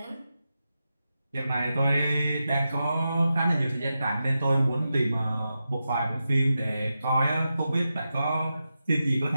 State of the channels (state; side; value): inverted; both; correlation -0.90